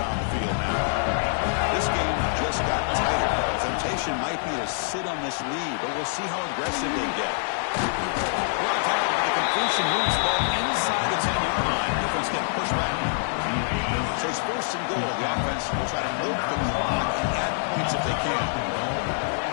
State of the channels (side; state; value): right; silent; digital silence